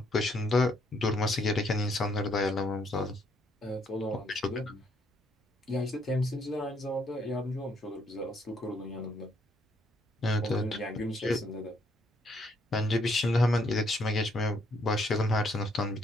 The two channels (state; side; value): normal; both; correlation 0.71